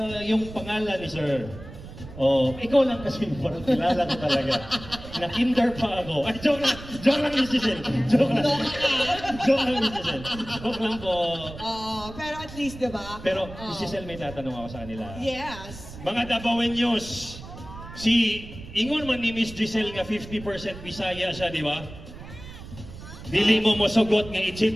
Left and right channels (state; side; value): noise; right; rumble, 14 dB below the sound